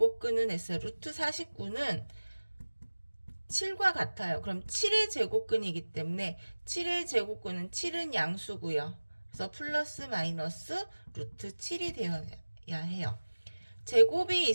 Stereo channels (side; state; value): both; inverted; correlation -1.00